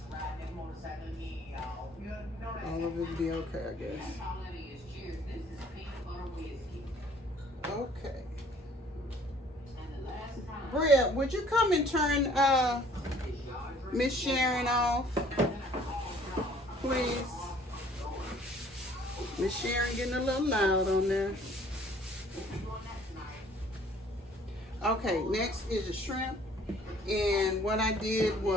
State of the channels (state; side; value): normal; both; correlation 0.56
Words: All of it will be okay, I guess. Okay. Bria, would you come and turn Miss Sharon off, please? Miss Sharon getting a little loud on there. Okay, next is the shrimp. And what I did